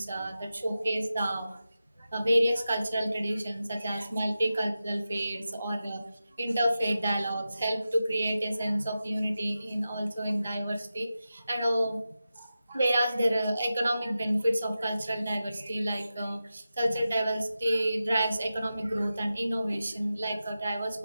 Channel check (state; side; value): inverted; both; correlation -0.92